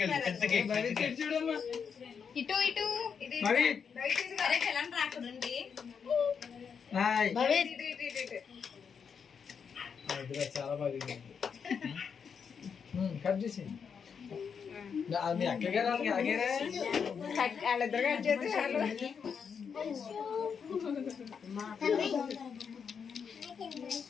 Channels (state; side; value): quieter; right; 6.6 dB